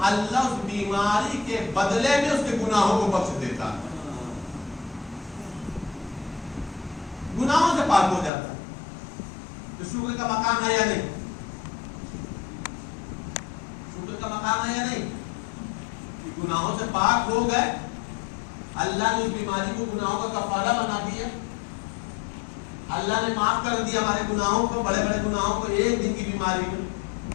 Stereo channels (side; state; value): right; drops out; at 8.3 s